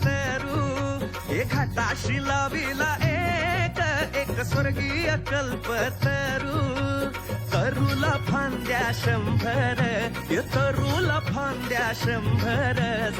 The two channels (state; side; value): identical; both; correlation 1.00